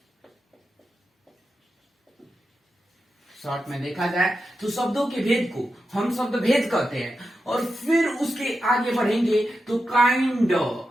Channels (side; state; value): both; normal; correlation 0.89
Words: शॉर्ट में देखा जाए तो शब्दों के भेद को हम शब्द भेद कहते हैं। और फिर उसके आगे बढ़ेंगे तो kind